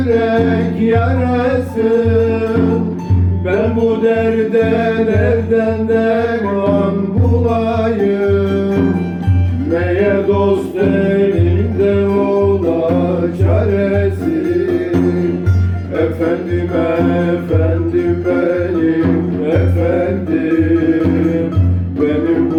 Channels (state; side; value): identical; both; correlation 1.00